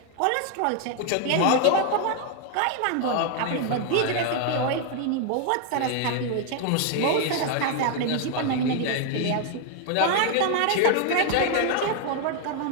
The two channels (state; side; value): different; both; correlation 0.00